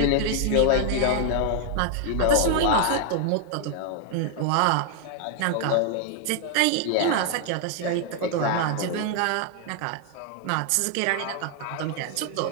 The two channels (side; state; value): both; different; correlation 0.00